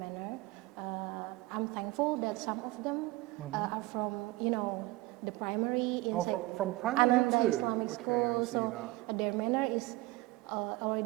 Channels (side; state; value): left; quieter; 20.2 dB